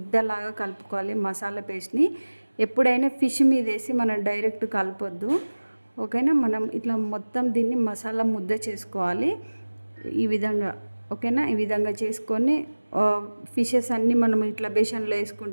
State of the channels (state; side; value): inverted; both; correlation -1.00